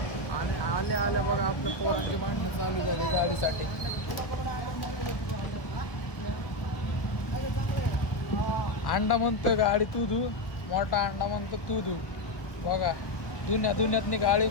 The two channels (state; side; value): late; right; 1.3 ms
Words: आणि आल्या बघा आपल्या पोरांची भांडणं चालू झाली गाडीसाठी. अंडा म्हणतोय गाडी तू धू, मोठा अंडा म्हणतो तू धू. बघा दुन्यातनी गाडी